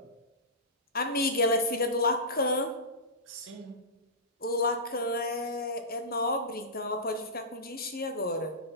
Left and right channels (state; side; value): normal; both; correlation -0.19